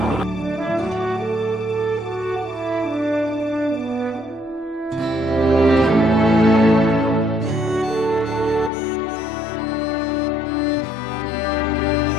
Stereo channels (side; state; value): right; drops out; at 8.7 s